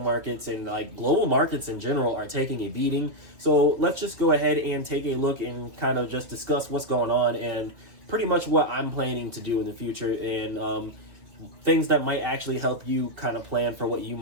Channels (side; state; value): left; late; 2.5 ms